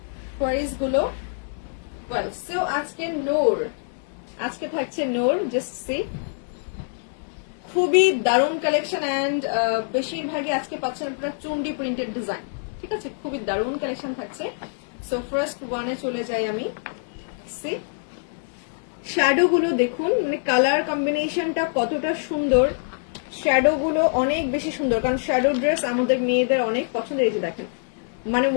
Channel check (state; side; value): silent; right; 62 dB below the other